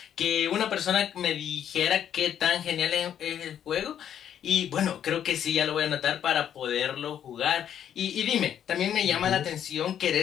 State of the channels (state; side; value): quieter; right; 9.6 dB